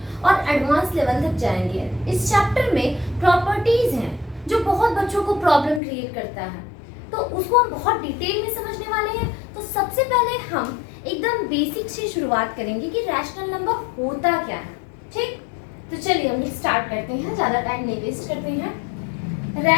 और एडवांस लेवल तक जाएंगे। इस चैप्टर में प्रॉपर्टीज हैं जो बहुत बच्चों को प्रॉब्लम क्रिएट करता है, तो उसको हम बहुत डिटेल में समझने वाले हैं। तो सबसे पहले हम एकदम बेसिक से शुरुआत करेंगे कि रैशनल नंबर होता क्या है। ठीक, तो चलिए हम स्टार्ट करते हैं, ज़्यादा टाइम नहीं वेस्ट करते हैं।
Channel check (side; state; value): right; drops out; at 5.8 s